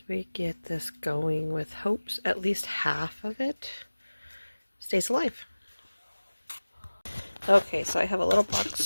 we get this going, with hopes at least half of it stays alive. Okay, so I have a little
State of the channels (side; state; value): both; inverted; correlation -1.00